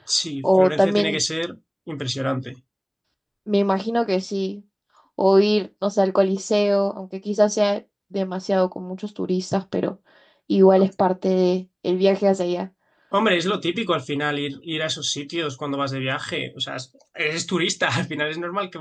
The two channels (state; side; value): identical; both; correlation 1.00